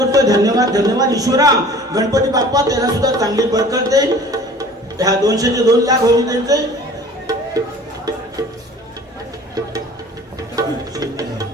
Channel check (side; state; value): both; normal; correlation 0.46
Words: धन्यवाद ईश्वरा गणपती बाप्पा त्याला सुद्धा चांगली बरकत दे ह्या 200 चे 2 लाख होऊन जाईल ते